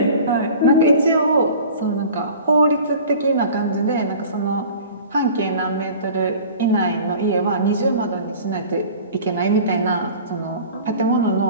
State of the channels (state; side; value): inverted; both; correlation -0.43